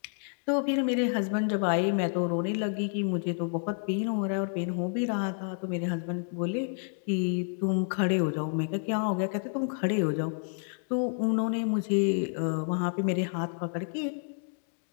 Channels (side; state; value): right; silent; 58 dB below the other